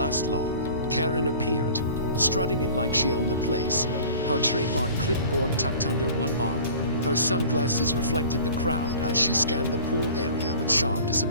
long. Karen appeared, strutting it like she owned the place, her trademark clipboard tucked under one arm. Her sunglasses reflected the crowd as she scanned the pool area with sharp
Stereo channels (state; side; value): inverted; both; correlation -0.44